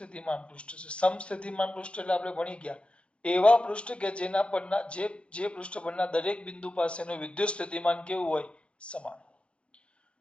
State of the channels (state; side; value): late; right; 0.059 ms